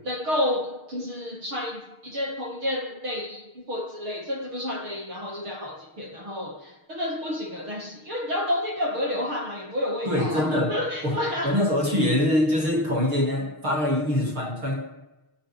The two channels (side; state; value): left; late; 6.5 ms